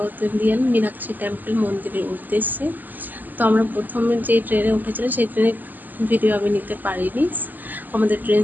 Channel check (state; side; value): late; left; 0.086 ms